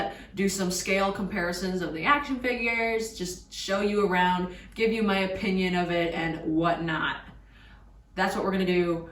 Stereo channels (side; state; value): both; identical; correlation 1.00